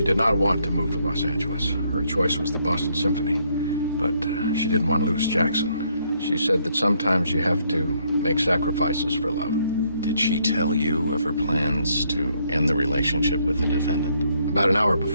did not want to move to Los Angeles. Her choice was the Boston Symphony, but she didn't want to lose Jackson. She said that sometimes you have to make sacrifices for love. Did she tell you of her plans to end the relationship with the defendant? About an hour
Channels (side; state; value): both; inverted; correlation -0.71